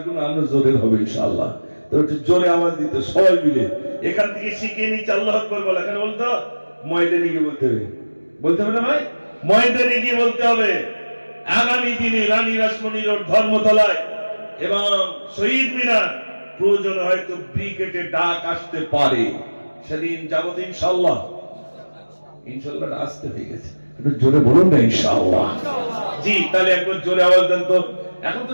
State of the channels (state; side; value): inverted; both; correlation -1.00